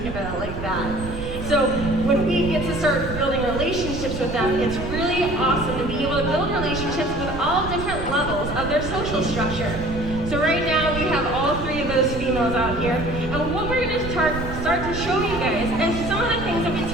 about it like that. So when we get to start building relationships with them, it's really awesome to be able to build relationships with all different levels of their social structure. So right now we have all 3 of those females out here, and what we're going to start to show you guys is some of the things that we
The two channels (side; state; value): right; noise; rumble, 8 dB below the sound